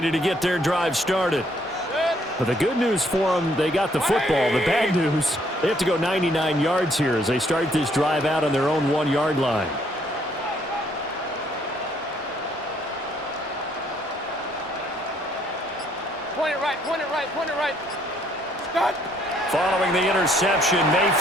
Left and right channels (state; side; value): normal; both; correlation 0.67